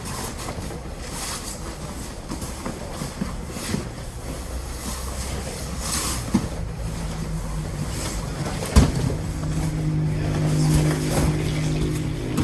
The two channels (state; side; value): identical; both; correlation 1.00